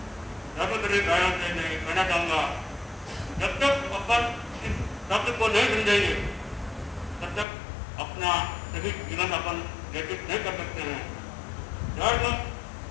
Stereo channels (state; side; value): drops out; right; at 7.5 s